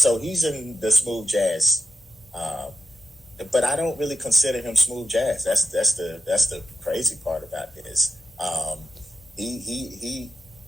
he's in the smooth jazz, but I don't really consider him smooth jazz. That's the crazy part about this. He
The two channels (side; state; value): both; normal; correlation 0.85